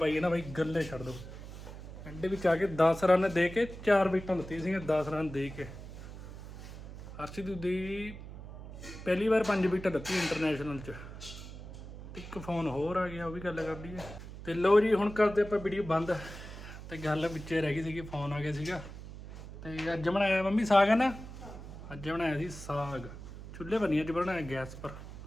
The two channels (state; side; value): noise; right; hum, 12 dB below the sound